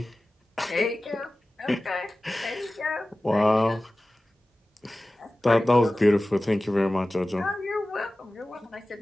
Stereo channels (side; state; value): both; normal; correlation 0.96